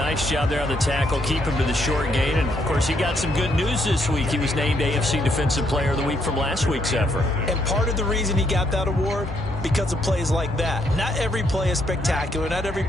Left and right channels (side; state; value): both; normal; correlation 0.73